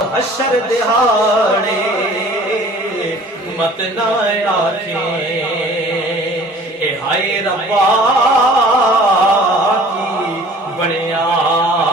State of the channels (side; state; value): both; normal; correlation 0.49